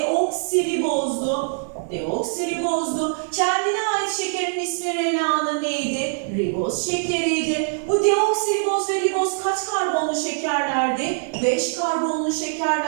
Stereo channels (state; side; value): silent; left; 64 dB below the other